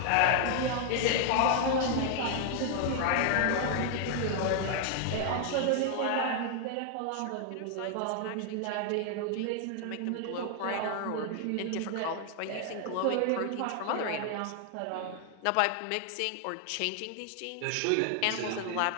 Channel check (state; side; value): different; both; correlation 0.00